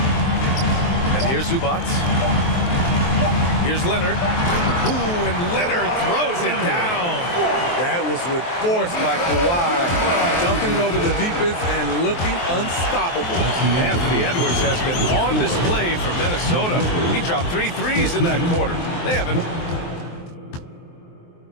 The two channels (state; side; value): late; right; 23 ms